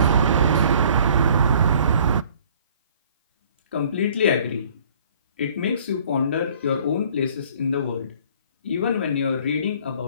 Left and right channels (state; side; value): inverted; both; correlation -0.56